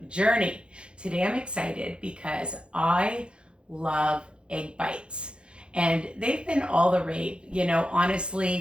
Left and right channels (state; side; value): late; left; 0.055 ms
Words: journey. Today I'm excited because I love egg bites and they've been all the rage,